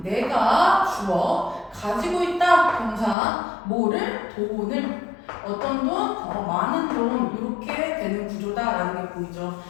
내가 주어 가지고 있다 동사 뭐를 돈을 어떤 돈? 많은 돈 이렇게 되는 구조다라는 게 보이죠.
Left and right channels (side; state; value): right; drops out; at 3.2 s